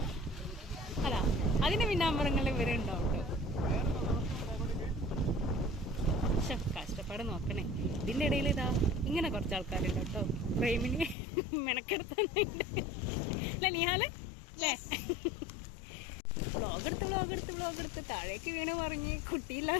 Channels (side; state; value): right; drops out; at 11.2 s